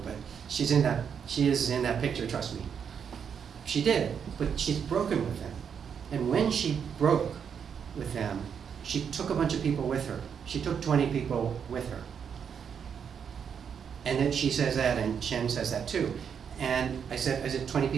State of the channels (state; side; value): quieter; left; 7.3 dB